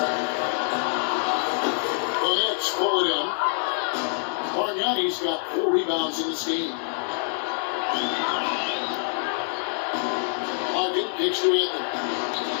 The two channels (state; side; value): silent; right; digital silence